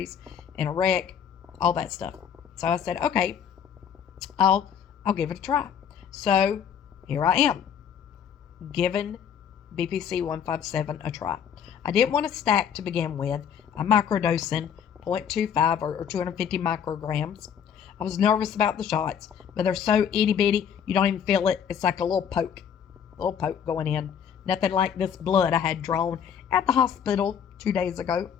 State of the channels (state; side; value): quieter; right; 8.2 dB